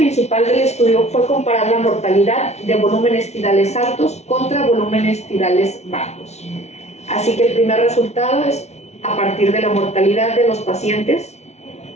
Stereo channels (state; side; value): late; right; 0.32 ms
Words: del estudio fue comparar la mortalidad de volúmenes tidales altos contra volúmenes tidales bajos. Así que el primer resultado es a partir de la mortalidad de los pacientes.